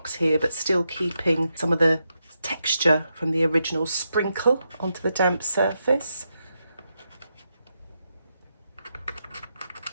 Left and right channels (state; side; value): inverted; both; correlation -0.84